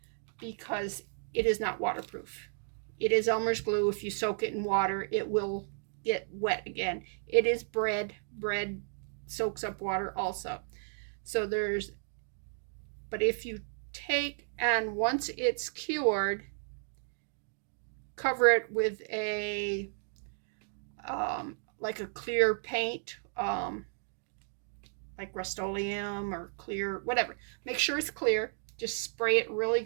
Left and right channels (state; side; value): silent; left; digital silence